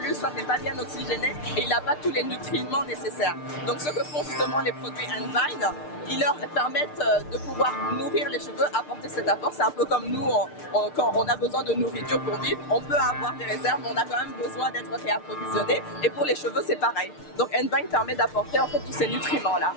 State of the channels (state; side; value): late; right; 6.6 ms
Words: soit n'est pas bien oxygéné et il n'a pas tous les nutriments nécessaires. Donc, ce que font justement les produits Envine, ils leur permettent de pouvoir nourrir les cheveux, apporter cet apport. C'est un peu comme nous, quand on a besoin de nourriture pour vivre, on peut avoir des réserves, mais on a quand même besoin d'être réapprovisionné. Et pour les cheveux, c'est pareil. Donc Envine permet d'apporter en fait tous ces nutriments-là